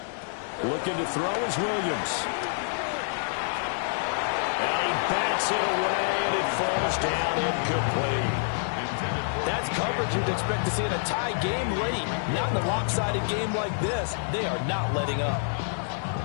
Looking to throw is Williams. And he bats it away, and it falls down incomplete. That's coverage you'd expect to see in a tie game late. Not in a lopsided game like this. They are not letting up.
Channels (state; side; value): silent; right; digital silence